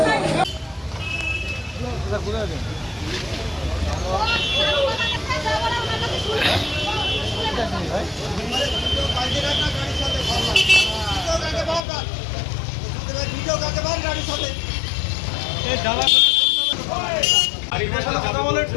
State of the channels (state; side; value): drops out; right; at 11.8 s